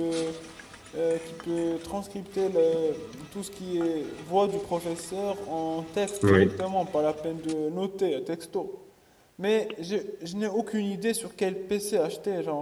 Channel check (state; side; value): identical; both; correlation 1.00